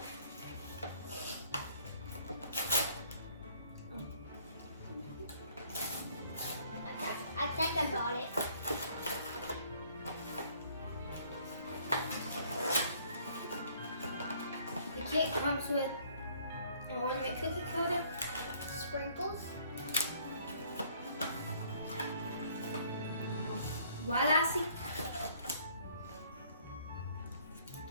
I think I got it. The kit comes with an ornament cookie coater, Sprinkles. white icing,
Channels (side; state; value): both; inverted; correlation -0.60